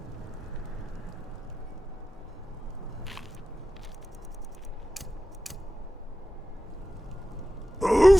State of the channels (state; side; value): normal; both; correlation 0.94